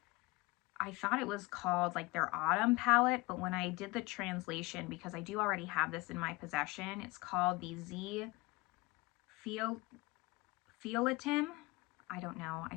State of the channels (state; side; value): quieter; right; 23.2 dB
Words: I thought it was called like their autumn palette, but when I did the translation, because I do already have this in my possession, it's called the Z Fioletem. I don't know. I